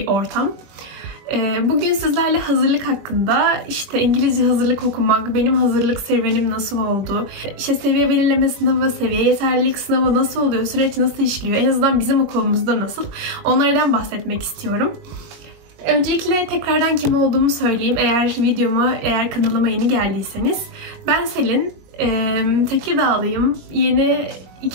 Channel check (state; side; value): late; left; 21 ms